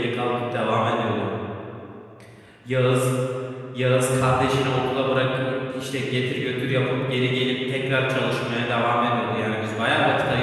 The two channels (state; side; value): identical; both; correlation 1.00